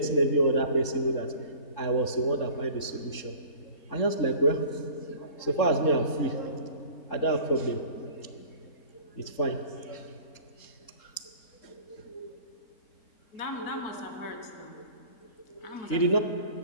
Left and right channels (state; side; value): late; right; 3.7 ms